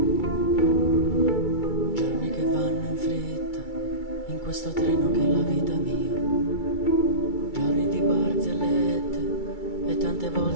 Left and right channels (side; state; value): right; late; 2.3 ms